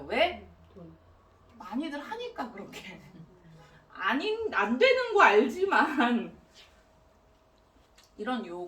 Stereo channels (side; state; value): both; identical; correlation 1.00